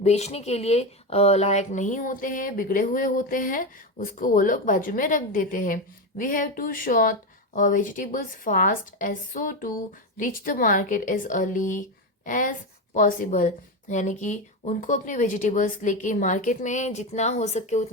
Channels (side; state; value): both; normal; correlation 0.14